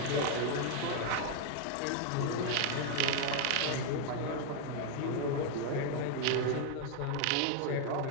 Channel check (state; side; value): different; both; correlation 0.00